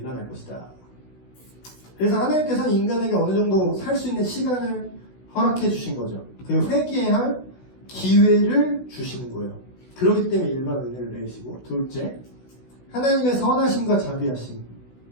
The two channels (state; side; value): late; right; 16 ms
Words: 것이다. 그래서 하나님께서는 인간에게 어느 정도 살 수 있는 시간을 허락해 주신 거죠. 그리고 회개할 기회를 주시는 거예요. 그렇기 때문에 일반 은혜를 내리시고 둘째, 하나님의 선하심과 자비하심.